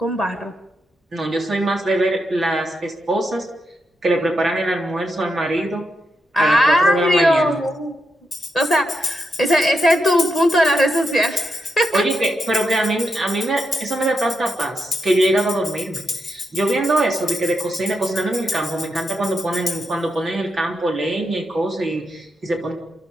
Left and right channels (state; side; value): normal; both; correlation 0.84